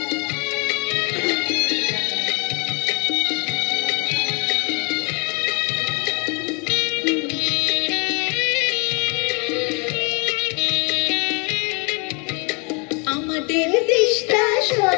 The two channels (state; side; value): quieter; right; 32.9 dB